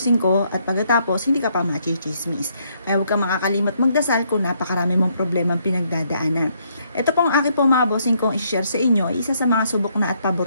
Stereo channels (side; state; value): both; inverted; correlation -0.71